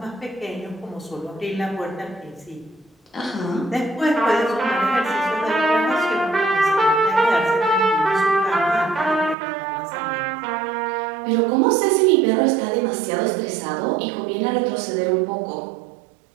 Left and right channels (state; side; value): drops out; left; at 9.3 s